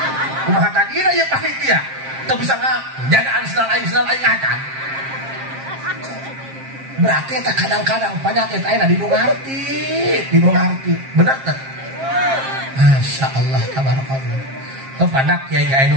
kumaha tadina ieu panitia teu bisa ngajagaan sendal aing acan berarti tak kadang-kadang penyakit ayeuna di nu ngarti bener teh Masya Allah tabarakallah kepada kiai kiai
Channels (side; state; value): left; late; 7.5 ms